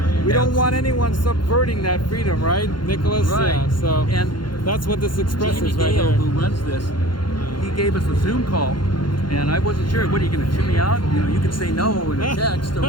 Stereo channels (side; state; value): right; late; 0.72 ms